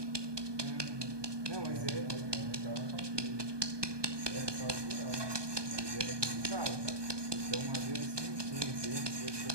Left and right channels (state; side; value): late; left; 1.2 ms